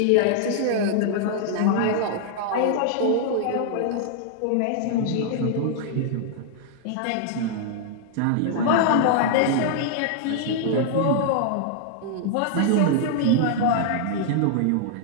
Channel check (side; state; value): both; different; correlation -0.01